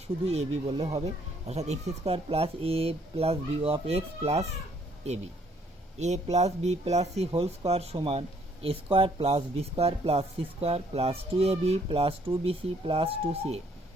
শুধু a b বললে হবে, অর্থাৎ x square plus A plus B of X plus A b, a plus B plus C whole square সমান a square plus B square plus C square plus 2ab plus 2bc plus 2ca,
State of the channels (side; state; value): both; normal; correlation 0.65